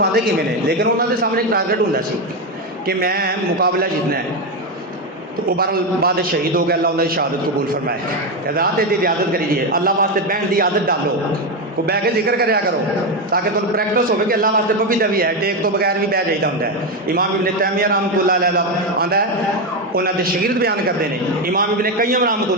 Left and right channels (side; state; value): both; normal; correlation 0.10